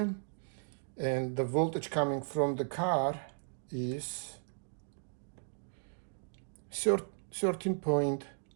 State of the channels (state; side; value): silent; left; digital silence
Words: And the voltage coming from the car is 13.4.